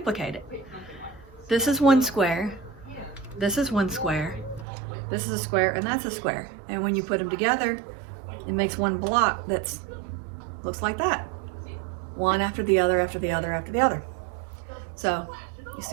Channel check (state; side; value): drops out; left; at 4.7 s